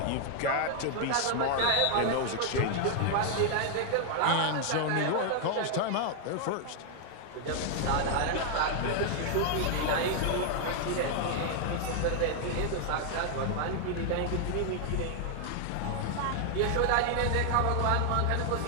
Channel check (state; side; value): different; both; correlation 0.00